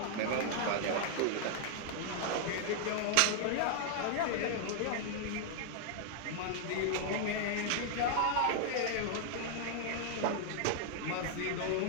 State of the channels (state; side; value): different; both; correlation 0.00